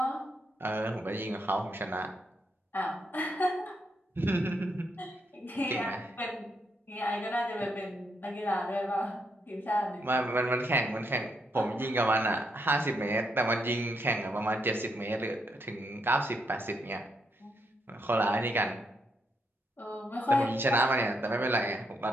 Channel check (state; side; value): normal; both; correlation 0.78